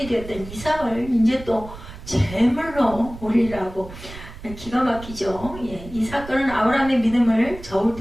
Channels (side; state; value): right; noise; rumble, 14 dB below the sound